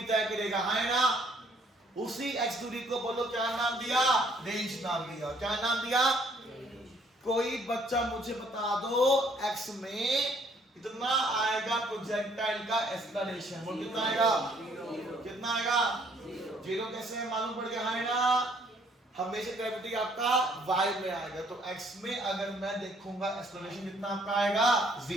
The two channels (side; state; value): both; normal; correlation 0.64